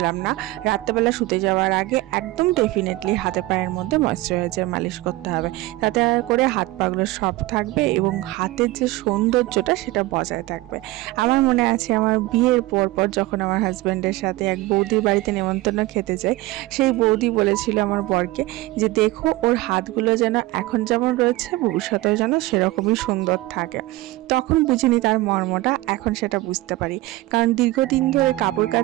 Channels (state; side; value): quieter; left; 19.0 dB